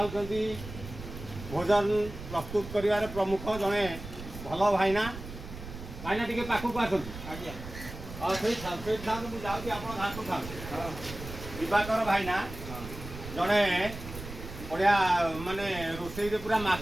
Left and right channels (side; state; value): right; noise; rumble, 11 dB below the sound